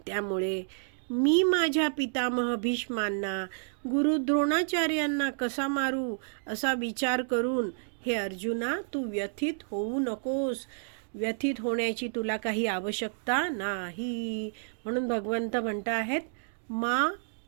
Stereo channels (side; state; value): left; silent; digital silence